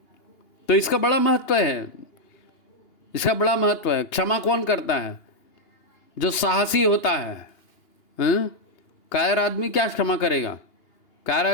तो इसका बड़ा महत्व है, इसका बड़ा महत्व है। क्षमा कौन करता है? जो साहसी होता है। कायर आदमी क्या क्षमा करेगा? कायर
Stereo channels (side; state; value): right; late; 2.8 ms